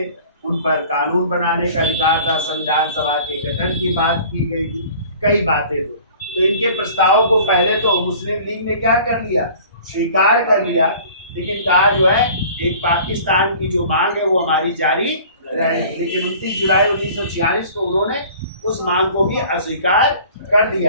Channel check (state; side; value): inverted; both; correlation -0.47